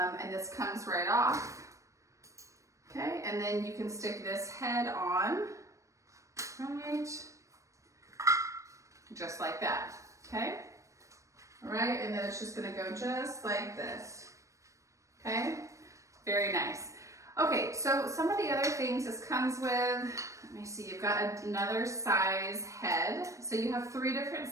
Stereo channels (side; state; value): left; late; 0.15 ms